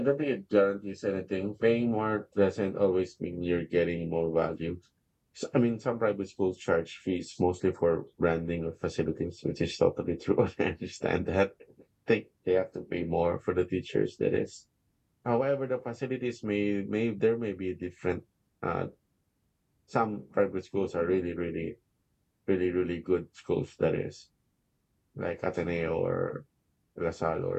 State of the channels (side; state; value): both; identical; correlation 1.00